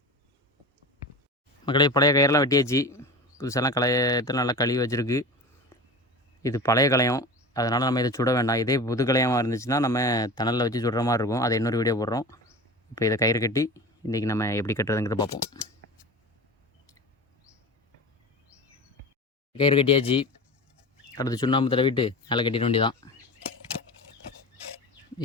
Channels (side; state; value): both; normal; correlation 0.31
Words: மக்களே, பழைய கயிறெல்லாம் வெட்டியாச்சு. புதுசெல்லாம் களையத்தில் நல்லா கழுவி வச்சுருக்கு. இது பழைய களையம், அதனால் நம்ம இதை சுட வேண்டாம். இதே புது களையமாக இருந்துச்சுன்னா நம்ம தணலில் வச்சு சுடுற மாதிரி இருக்கும். அதை இன்னொரு வீடியோ போடுறோம். இப்போ இதை கயிறு கட்டி இன்றைக்கி நம்ம எப்படி கட்டுறதுங்கிறத பார்ப்போம். கயிறு கட்டியாச்சு. அடுத்து சுண்ணாம்பு தடவிட்டு நல்லா கட்டிட வேண்டியதான்.